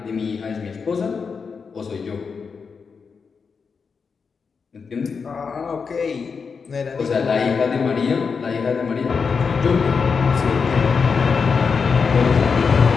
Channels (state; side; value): quieter; right; 5.5 dB